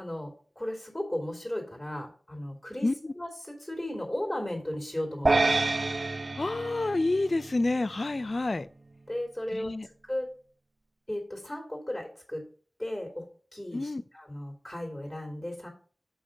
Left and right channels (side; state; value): both; normal; correlation 0.96